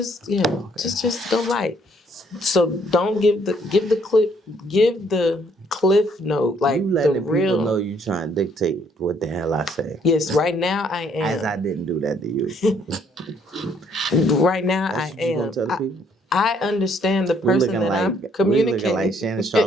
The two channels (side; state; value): both; normal; correlation 0.66